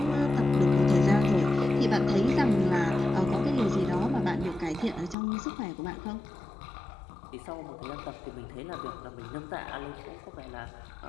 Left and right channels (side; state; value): right; drops out; at 5.2 s